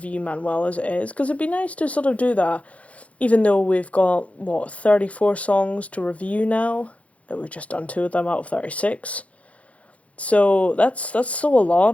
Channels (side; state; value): right; late; 0.065 ms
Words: Manuel as it is, because it'd be nice to sort of do that, even though we've got, 34 songs to review now. We've just done 2 of them out of 36. So that's still a